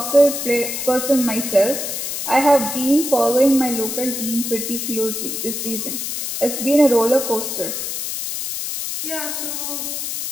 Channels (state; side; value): noise; left; hiss, 4 dB below the sound